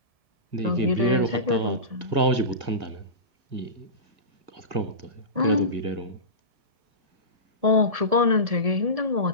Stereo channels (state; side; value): late; left; 1.7 ms